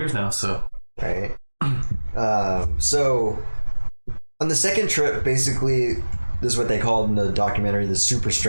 now, so. Right. So, on the second trip, basically, this is what they called in the documentary the super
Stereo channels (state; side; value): inverted; both; correlation -1.00